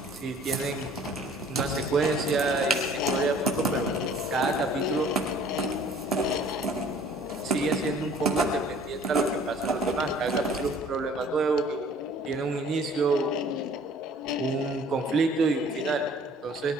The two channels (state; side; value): normal; both; correlation 0.53